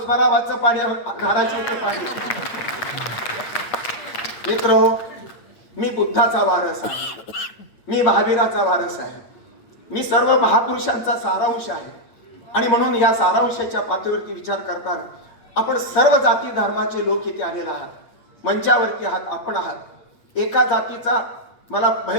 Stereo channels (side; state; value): right; late; 8.6 ms